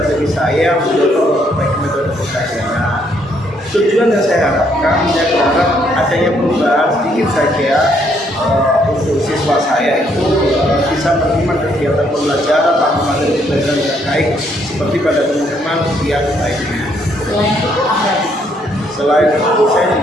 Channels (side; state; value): both; normal; correlation 0.70